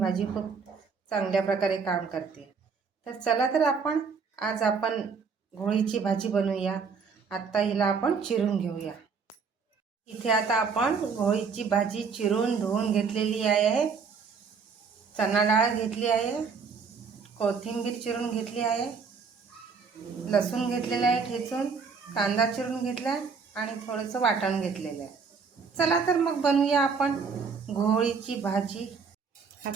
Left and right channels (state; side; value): quieter; left; 5.5 dB